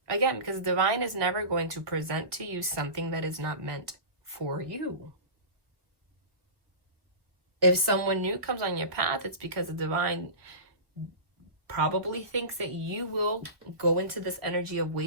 Again, because the divine is never going to present to you something that is not meant for you. If someone new comes on your path, it's because the divine probably thinks that you will go into this energy of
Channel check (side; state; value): left; late; 1.2 ms